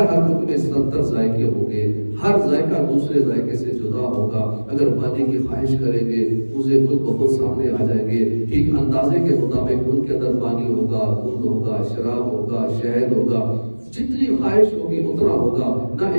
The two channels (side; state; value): both; inverted; correlation -1.00